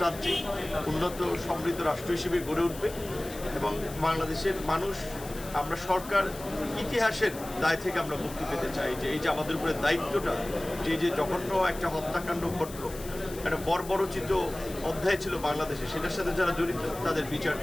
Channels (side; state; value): left; noise; hiss, 15 dB below the sound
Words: উন্নত সমৃদ্ধ রাষ্ট্র হিসেবে গড়ে উঠবে এবং বাংলাদেশের মানুষ, আমরা সরকার ইতিহাসের দায় থেকে আমরা মুক্তি পেতে চাই। যে এই যে আমাদের উপরে দায়িত্বটা, যে জঘন্য একটা হত্যাকাণ্ড ঘটল, একটা বর্বরচিত অধ্যায় ছিল বাংলাদেশে, সেটার সাথে যারা জড়িত তাদের বিচার